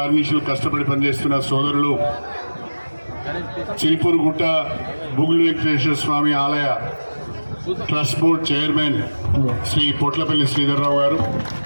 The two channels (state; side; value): inverted; both; correlation -1.00